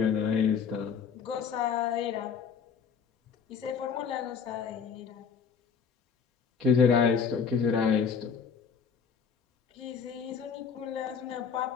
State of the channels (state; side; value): quieter; right; 6.5 dB